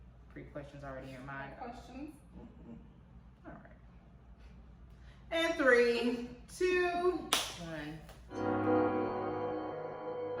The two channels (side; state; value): both; identical; correlation 1.00